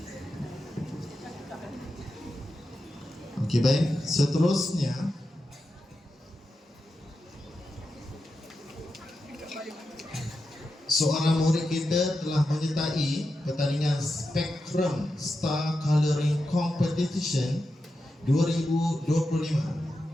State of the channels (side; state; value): both; normal; correlation 0.89